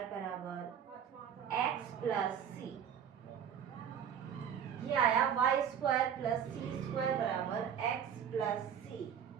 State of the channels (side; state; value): left; quieter; 8.3 dB